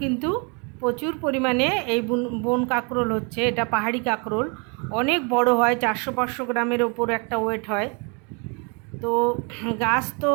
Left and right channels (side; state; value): left; quieter; 34.1 dB